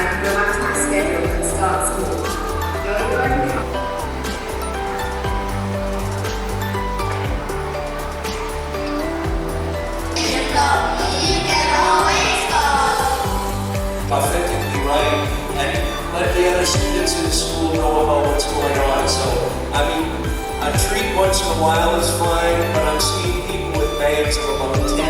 can go back to my schedule and start school. Authentically right, and let the other students in the school know about what's going on. So, I mean, a treat once in a while is fine, but I'm seeing people with bags of about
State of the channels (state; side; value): identical; both; correlation 1.00